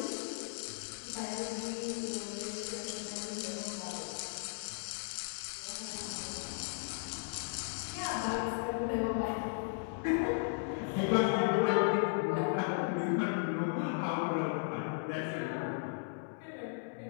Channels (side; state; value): right; silent; digital silence